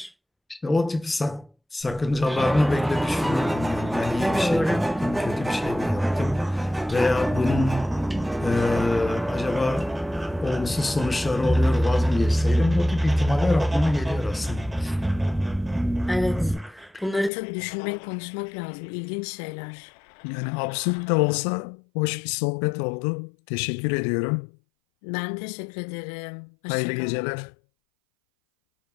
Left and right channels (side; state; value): right; drops out; at 17.3 s